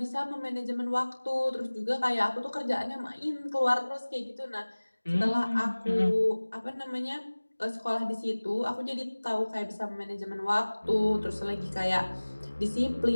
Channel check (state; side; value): inverted; both; correlation -1.00